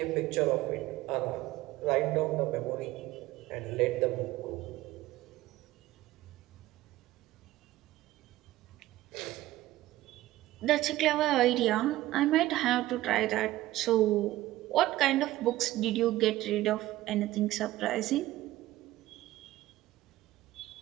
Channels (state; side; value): quieter; left; 16.2 dB